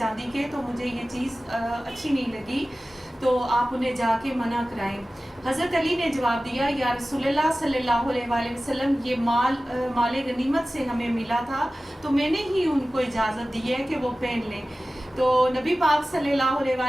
के, तो मुझे ये चीज़ अच्छी नहीं लगी, तो आप उन्हें जाके मना कराएं। हज़रत अली ने जवाब दिया, या रसूलुल्लाह सल्लल्लाहु अलैहि वसल्लम ये माल गनीमत से हमें मिला था, तो मैंने ही उनको इजाज़त दी है कि वो पहन लें। तो नबी पाक सल्लल्लाहु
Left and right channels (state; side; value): normal; both; correlation 0.96